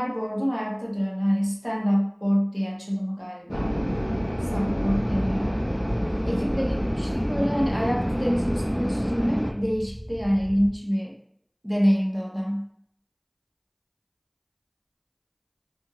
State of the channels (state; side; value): identical; both; correlation 1.00